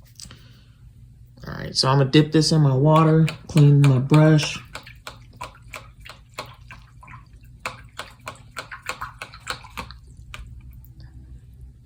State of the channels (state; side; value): identical; both; correlation 1.00